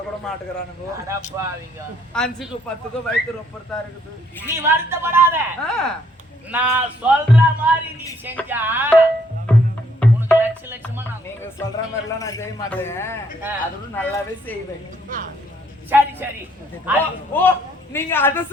மாட்டுக்கிறானுங்க. 5க்கு 10க்கு வயிற்று ரொப்பறதா இருக்குது. நீ வருத்தப்படாத. நான் சொல்ற மாதிரி நீ செஞ்சா உனக்கு லட்சமா நீங்க சொல்ற மாதிரி எல்லாம் நான் செய்ய மாட்டேன். அதோட நல்லாவே செய்வேன். சரி சரி. ஓ நீங்க அத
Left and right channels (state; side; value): normal; both; correlation 0.67